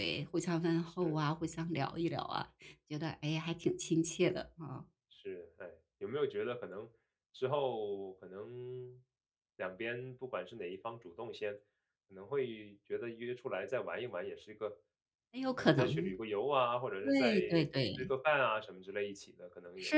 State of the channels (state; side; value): identical; both; correlation 1.00